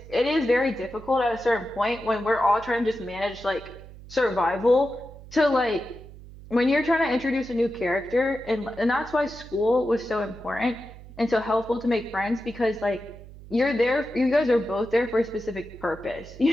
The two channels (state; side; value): noise; right; hum, 17 dB below the sound